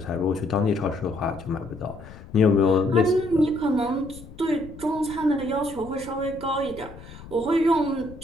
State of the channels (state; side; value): noise; left; rumble, 17 dB below the sound